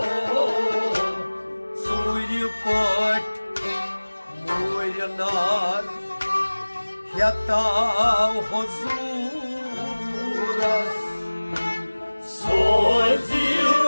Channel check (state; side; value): inverted; both; correlation -1.00